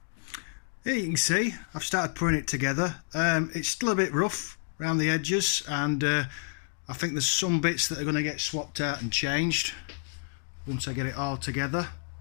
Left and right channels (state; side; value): silent; right; digital silence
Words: Here you can see I've started putting it together. It's still a bit rough around the edges, and I think there's some bits that are going to get swapped out and changed once I get it all together.